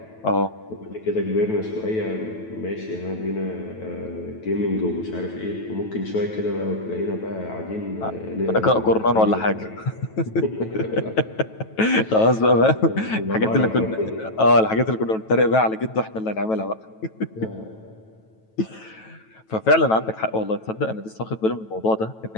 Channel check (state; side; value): late; right; 9.2 ms